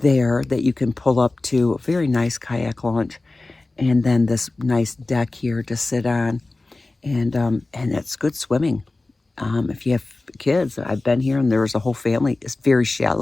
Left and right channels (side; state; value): right; quieter; 3.1 dB